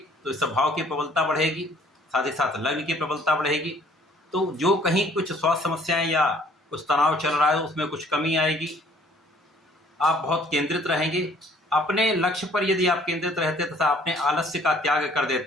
तो इस भाव की प्रबलता बढ़ेगी, साथ ही साथ लग्न की प्रबलता बढ़ेगी। तो जो कहीं कुछ स्वास्थ्य समस्याएं या कुछ तनाव चल रहा है उसमें कुछ कमी आएगी। आप बहुत केंद्रित रहेंगे अपने लक्ष्य पर। यदि आप केंद्रित रहते तथा अपने आलस्य का त्याग कर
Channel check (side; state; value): both; normal; correlation 0.58